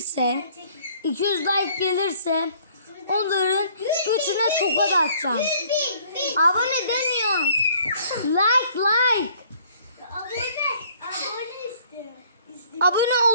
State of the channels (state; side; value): inverted; both; correlation -0.58